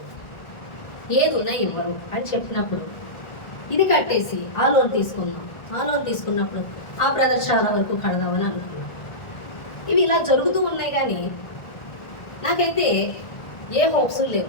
ఏది ఉన్నా ఇవ్వరు అని చెప్పినప్పుడు ఇది కట్టేసి ఆ లోన్ తీసుకుందాం. ఆ లోన్ తీసుకున్నప్పుడు ఆ బ్రదర్ చాలా వరకు కడదామని అనుకున్నాను. ఇవి ఇలా జరుగుతూ ఉన్నాయి, కానీ నాకైతే ఏ హోప్స్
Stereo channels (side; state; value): right; late; 1.4 ms